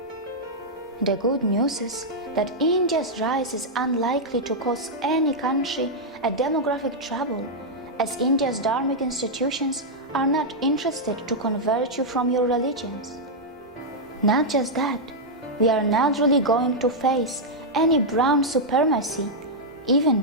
The good news is that India's rise is unlikely to cause any country a demographic trouble, as India's dharmic institutions are not interested to convert you from your religions. Not just that, we are not really going to face any brown supremacy, even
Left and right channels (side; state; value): both; normal; correlation -0.05